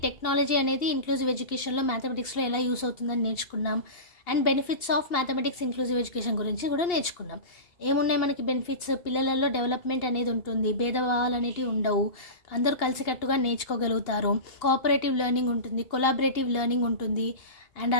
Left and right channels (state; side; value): late; right; 2.8 ms